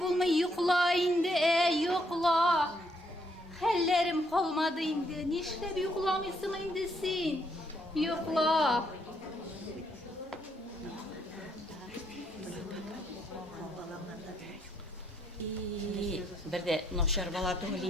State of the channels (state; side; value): normal; both; correlation 0.72